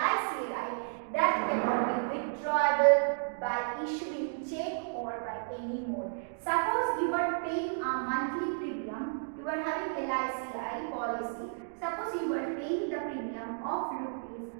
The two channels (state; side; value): silent; left; digital silence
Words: that cannot be withdrawable by issuing check or by any mode. Suppose you are paying a monthly premium you are having LICI policy. Suppose you are paying the premium of rupees